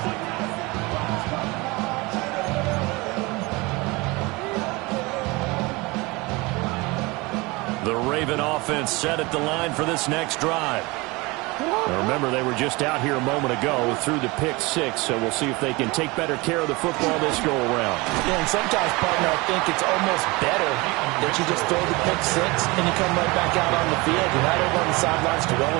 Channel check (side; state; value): left; quieter; 24.3 dB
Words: The Raven offense set at the line for this next drive. Now remember, they were just out here a moment ago through the pick 6, so we'll see if they can take better care of the football this go-around. Yeah, and sometimes, partner, I think it's almost better that you just throw the pick 6 and you come right back out on the field. You're not over on the sidelines